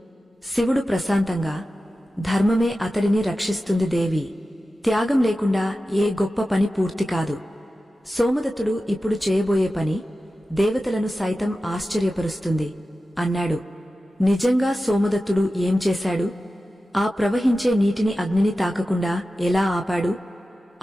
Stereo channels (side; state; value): both; normal; correlation 0.94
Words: శివుడు ప్రశాంతంగా, ధర్మమే అతడిని రక్షిస్తుంది దేవి. త్యాగం లేకుండా ఏ గొప్ప పని పూర్తి కాదు. సోమదత్తుడు ఇప్పుడు చేయబోయే పని దేవతలను సైతం ఆశ్చర్యపరుస్తుంది అన్నాడు. నిజంగా సోమదత్తుడు ఏం చేశాడు? ఆ ప్రవహించే నీటిని అగ్నిని తాకకుండా ఎలా ఆపాడు?